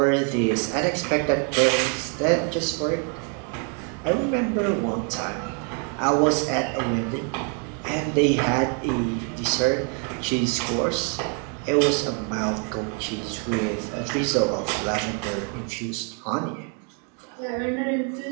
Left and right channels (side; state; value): left; quieter; 39.8 dB